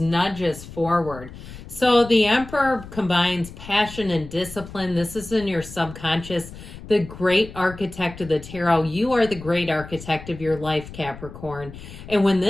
forward. So the Emperor combines passion and discipline. This is in your subconscious. The great architect of the tarot. You are the great architect of your life, Capricorn. And when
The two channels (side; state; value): left; noise; rumble, 15 dB below the sound